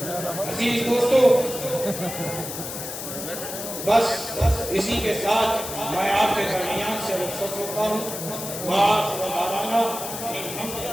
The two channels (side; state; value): left; noise; hiss, 7 dB below the sound